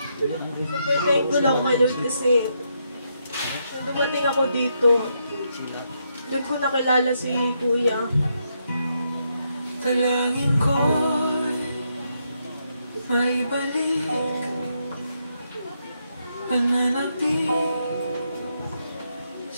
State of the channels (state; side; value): inverted; both; correlation -0.79